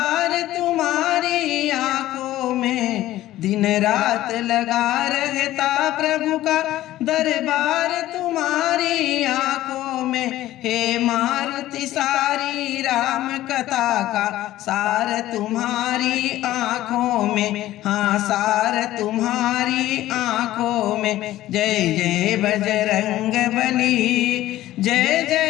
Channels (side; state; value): right; quieter; 14.9 dB